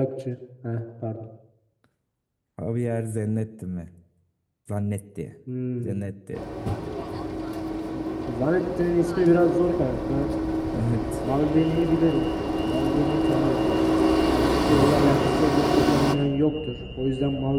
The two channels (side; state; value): both; identical; correlation 1.00